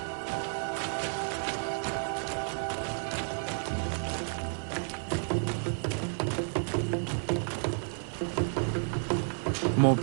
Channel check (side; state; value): left; silent; 57 dB below the other